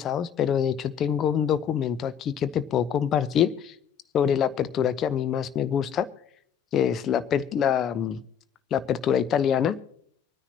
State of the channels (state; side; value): quieter; right; 8.3 dB